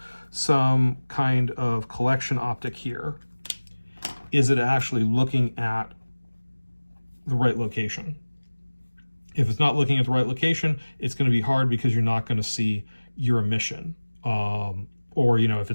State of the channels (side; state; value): both; inverted; correlation -1.00